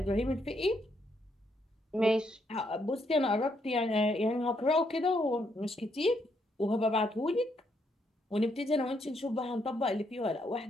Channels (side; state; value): both; normal; correlation 0.75